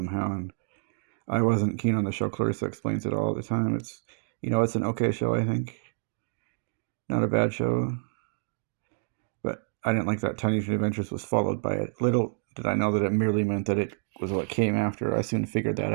and I wasn't keen on the show. Clarissa explains it all the time. It's it's an okay show, I think. Not a bad show. But I didn't like that Tiny Toon Adventures was followed by it. Little did I know that it merely meant that it was what came after. I soon figured that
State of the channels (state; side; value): silent; left; digital silence